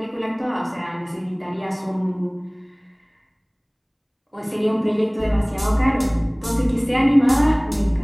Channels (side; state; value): both; identical; correlation 1.00